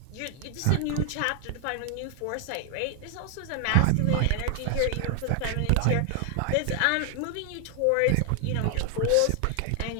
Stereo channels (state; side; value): different; both; correlation 0.00